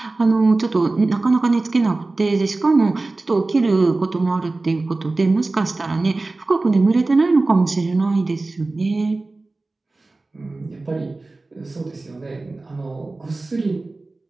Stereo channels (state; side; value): quieter; left; 3.3 dB